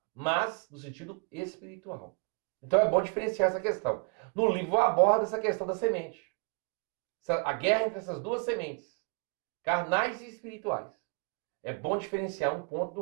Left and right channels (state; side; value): quieter; left; 38.0 dB